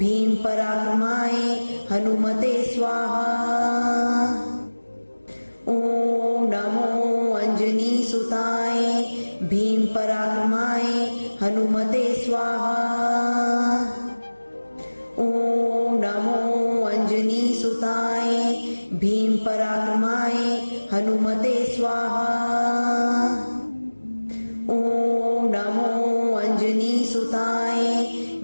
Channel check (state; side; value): inverted; both; correlation -1.00